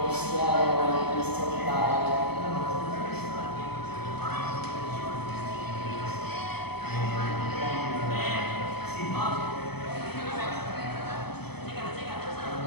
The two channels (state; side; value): late; right; 0.97 ms